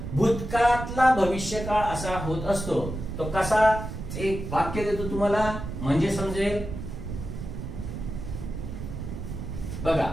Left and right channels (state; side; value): noise; right; rumble, 7 dB below the sound